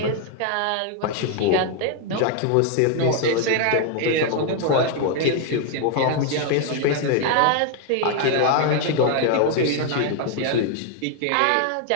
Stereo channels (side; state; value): both; different; correlation 0.00